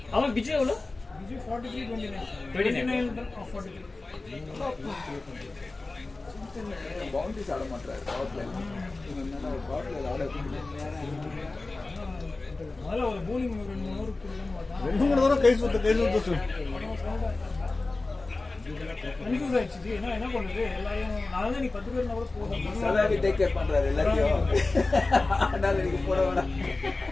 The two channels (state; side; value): quieter; right; 3.3 dB